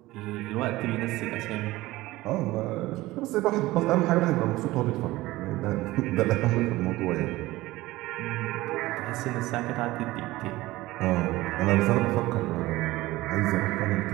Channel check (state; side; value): quieter; left; 18.4 dB